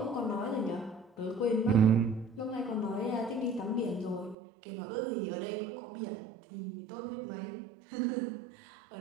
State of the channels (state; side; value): drops out; left; at 4.4 s